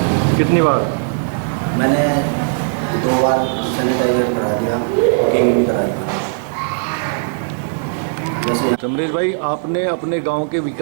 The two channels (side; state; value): left; silent; digital silence